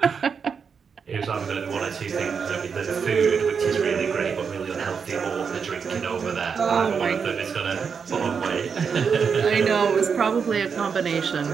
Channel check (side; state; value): left; quieter; 6.2 dB